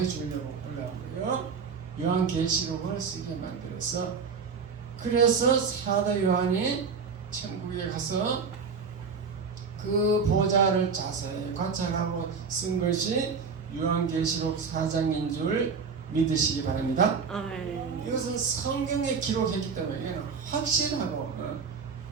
올라온 거예요. 요한계시록을 쓰게 만들어서. 그래서 사도 요한이 천국에 가서 그 보호자를 자세히 관찰하고 쓴 것이 요한계시록 4장인 줄 믿으시기 바랍니다. 아멘. 이것은 성경에 기록했기 때문에 이거는 확실하고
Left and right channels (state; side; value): quieter; left; 5.5 dB